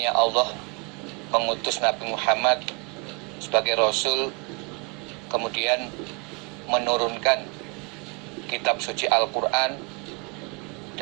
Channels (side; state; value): left; quieter; 31.9 dB